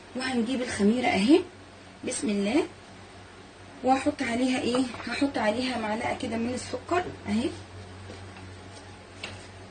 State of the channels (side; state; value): both; identical; correlation 1.00